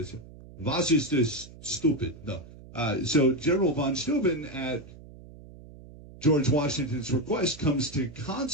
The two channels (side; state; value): right; noise; hum, 18 dB below the sound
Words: was ist das stupid? No. So General von Steuben, at George Washington's request, comes to